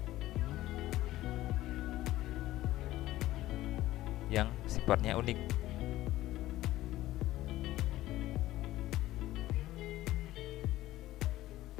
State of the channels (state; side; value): quieter; right; 15.6 dB